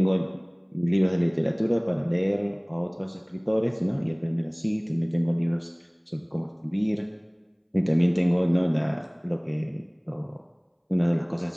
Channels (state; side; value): identical; both; correlation 1.00